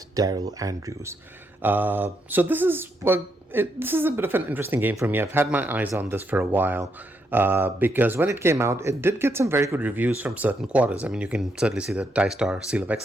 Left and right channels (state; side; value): normal; both; correlation 0.78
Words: Daryl Andrews. So this is a bit of an interesting game for me. I've had my eyes on this for a while. Because when it came out, it did get some very good reviews from certain quarters. I mean, you can certainly see the TieStar Seal of